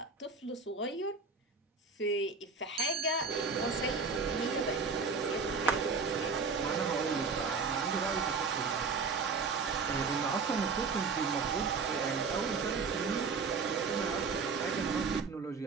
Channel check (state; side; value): quieter; left; 4.8 dB